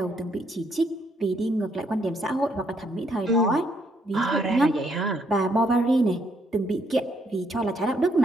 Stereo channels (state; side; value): normal; both; correlation 0.72